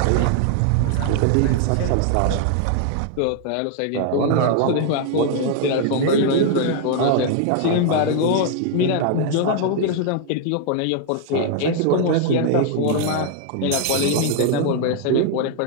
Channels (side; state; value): both; different; correlation 0.00